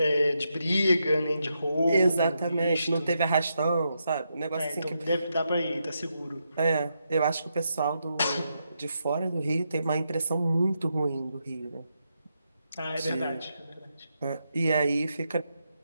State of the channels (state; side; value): inverted; both; correlation -0.83